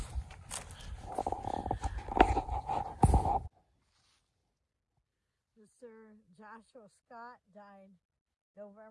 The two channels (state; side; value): identical; both; correlation 1.00